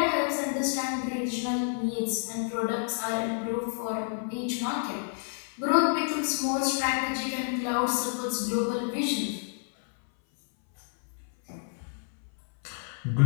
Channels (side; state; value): right; silent; 58 dB below the other